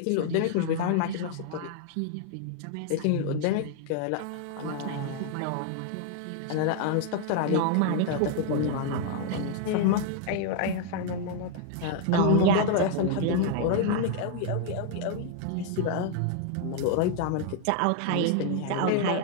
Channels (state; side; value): different; both; correlation 0.00